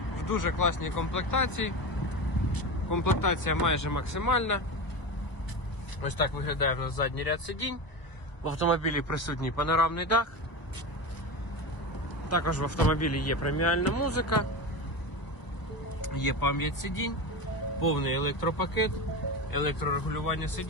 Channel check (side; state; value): right; late; 1.3 ms